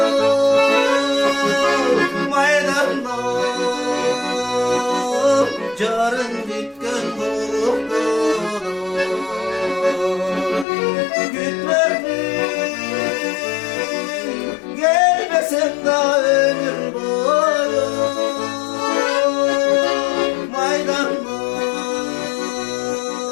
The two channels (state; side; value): drops out; right; at 10.7 s